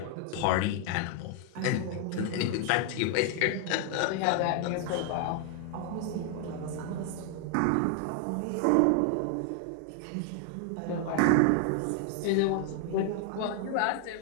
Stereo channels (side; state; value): both; different; correlation 0.00